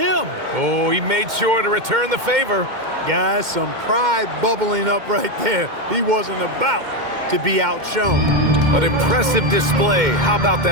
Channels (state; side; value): late; left; 2.1 ms